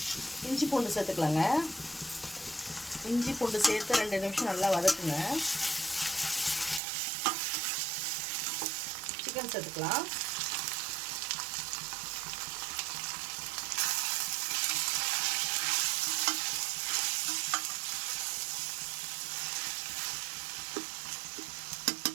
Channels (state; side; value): drops out; left; at 6.8 s